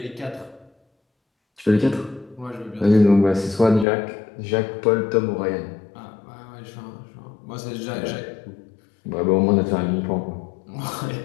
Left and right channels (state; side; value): drops out; right; at 3.9 s